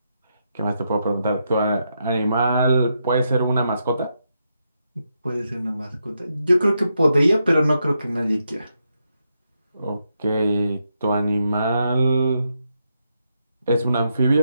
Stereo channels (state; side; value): inverted; both; correlation -0.82